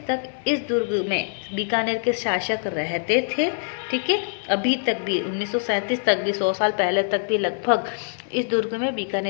तक इस दुर्ग में बीकानेर के शासक रहते थे। ठीक है, अभी तक भी 1937 तक भी, 100 साल पहले तक भी लगभग इस दुर्ग में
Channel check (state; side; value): silent; right; digital silence